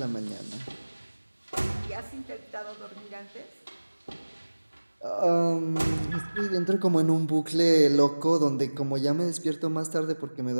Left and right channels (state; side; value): inverted; both; correlation -1.00